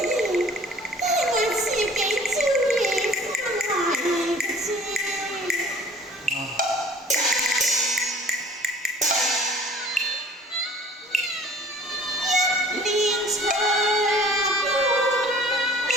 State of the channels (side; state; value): both; normal; correlation 0.51